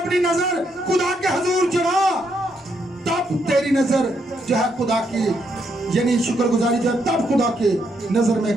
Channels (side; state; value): both; normal; correlation 0.77